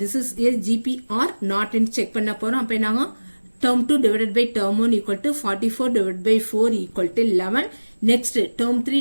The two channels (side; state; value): both; inverted; correlation -1.00